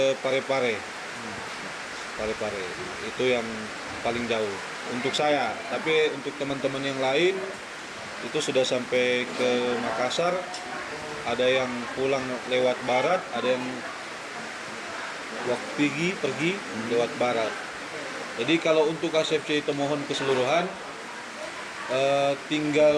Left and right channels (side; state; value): both; identical; correlation 1.00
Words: Parepare. Parepare itu yang paling jauh untuk saya, tapi untuk teman-teman yang lain itu sudah sampai ke Makassar, ada yang pulang lewat barat, ada yang pergi lewat barat. Jadi kalau untuk HSFCI Tomohon keseluruhan